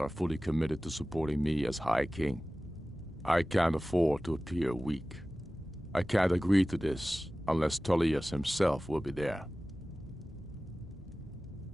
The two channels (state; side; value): noise; left; rumble, 22 dB below the sound